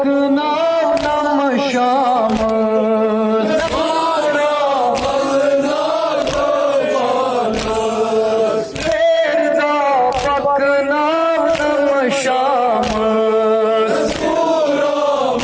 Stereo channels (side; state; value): both; identical; correlation 1.00